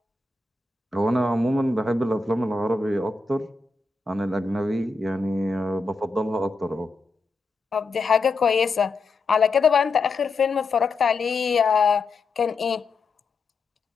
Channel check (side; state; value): right; quieter; 3.8 dB